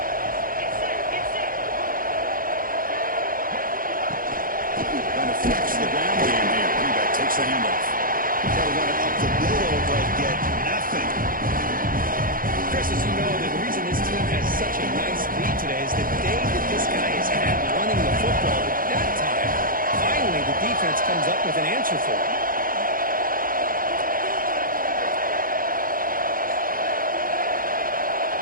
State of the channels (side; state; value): left; late; 0.41 ms